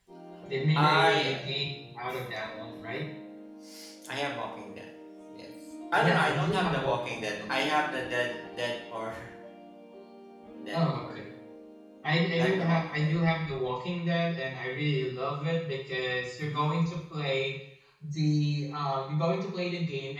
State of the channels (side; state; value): both; identical; correlation 1.00